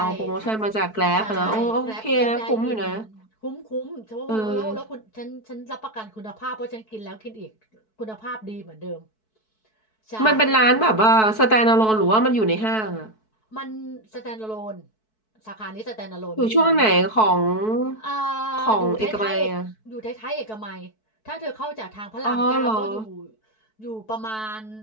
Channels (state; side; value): late; right; 4.6 ms